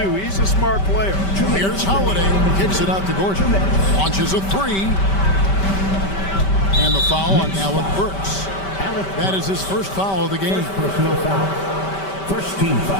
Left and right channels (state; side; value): late; right; 5.2 ms